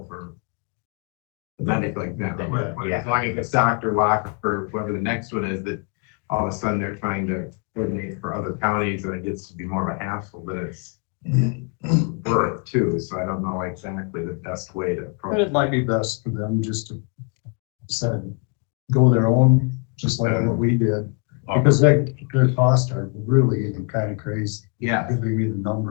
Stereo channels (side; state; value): right; quieter; 36.4 dB